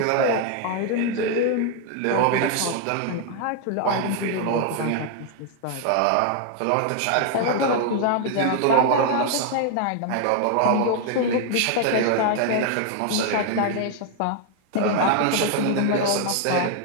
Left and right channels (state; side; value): different; both; correlation 0.00